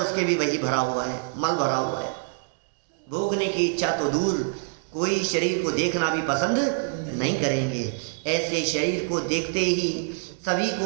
भी वही भरा हुआ है, मल भरा हुआ है। भोगने की इच्छा तो दूर, कोई शरीर को देखना भी पसंद नहीं करेंगे। ऐसे शरीर को देखते ही सभी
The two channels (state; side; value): silent; left; digital silence